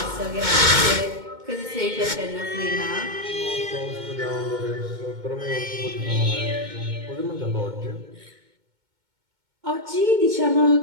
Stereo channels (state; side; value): late; left; 2.2 ms